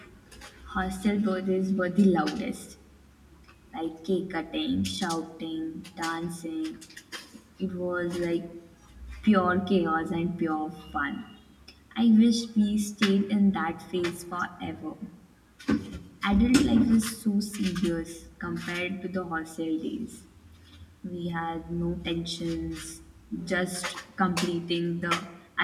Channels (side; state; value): both; identical; correlation 1.00